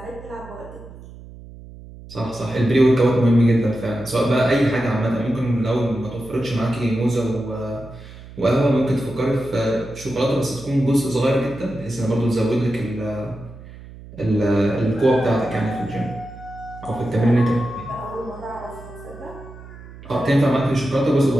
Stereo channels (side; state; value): right; noise; hum, 17 dB below the sound